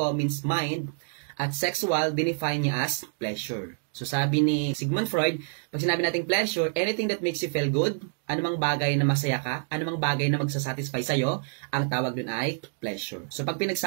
means mind, at sexual, define niya as pleasure. So sabi ni Sigmund Freud, pag sinabi natin pleasure, anything that makes you feel good, anumang bagay na masaya ka, anumang bagay na magsasatisfy sa'yo, ang tawag dun ay pleasure. So pag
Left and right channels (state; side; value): silent; left; digital silence